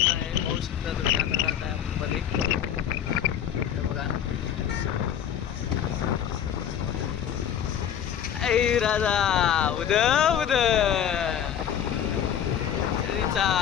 आहे. पाहू शकता तुम्ही आता जात आहे आपण मध्ये. हे बघा ऐ राजा उद उद सरीचा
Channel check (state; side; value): quieter; right; 9.5 dB